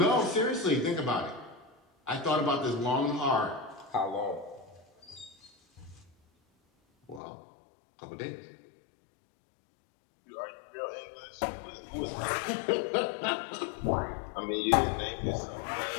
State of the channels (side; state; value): right; drops out; at 7.2 s